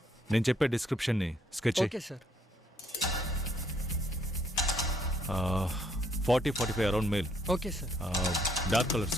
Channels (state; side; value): normal; both; correlation 0.69